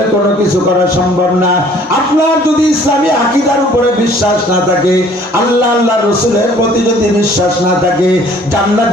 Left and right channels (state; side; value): normal; both; correlation 0.55